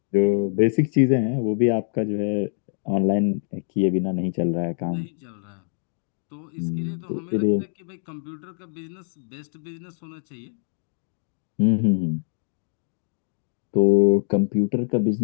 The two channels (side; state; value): right; silent; digital silence